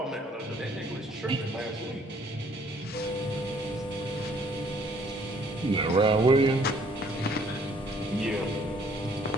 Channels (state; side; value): normal; both; correlation 0.61